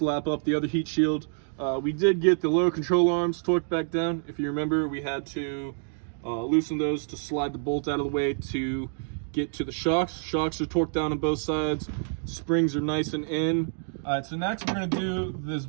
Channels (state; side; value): silent; left; digital silence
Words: up the other heat shield. We did get the low control arms torqued back down. If you remember, we had to loosen those to slide the bolt out of the way to get to the shocks. Shocks are torqued down on both sides. Springs are nice and in. All right, so next we're gonna do this